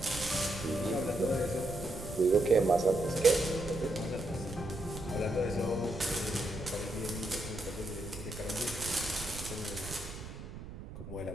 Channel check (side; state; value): right; noise; rumble, 11 dB below the sound